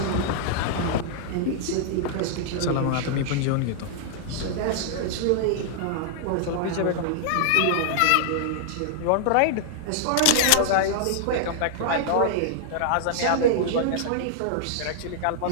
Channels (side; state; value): both; different; correlation -0.01